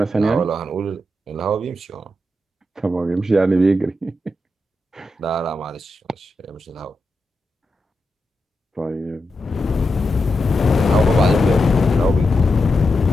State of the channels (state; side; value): normal; both; correlation 0.87